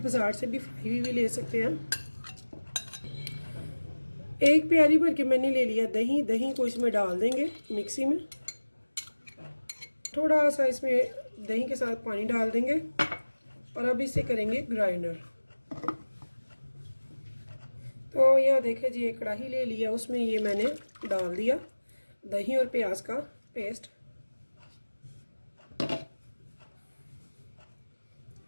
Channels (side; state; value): both; inverted; correlation -1.00